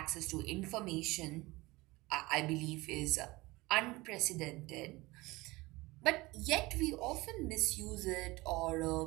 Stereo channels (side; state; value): left; quieter; 21.5 dB